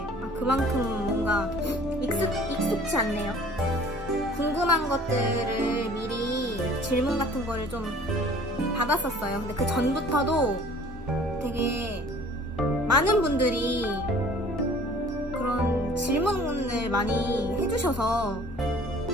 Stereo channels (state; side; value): normal; both; correlation 0.50